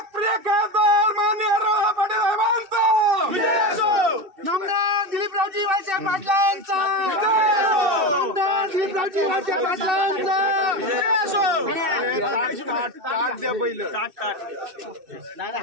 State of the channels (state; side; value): late; left; 2.6 ms